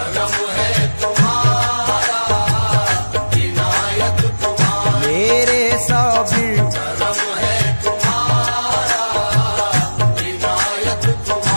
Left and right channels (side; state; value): both; inverted; correlation -1.00